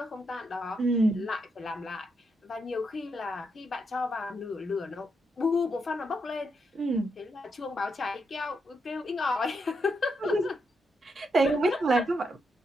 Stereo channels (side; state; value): both; normal; correlation 0.81